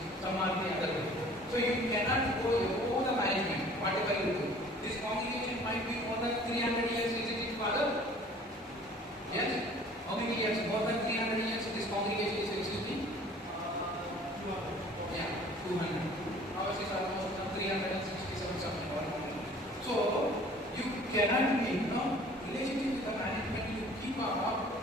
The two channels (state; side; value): normal; both; correlation 0.50